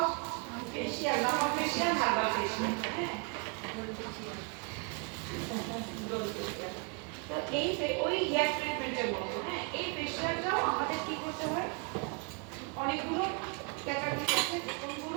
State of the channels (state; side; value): quieter; left; 35.8 dB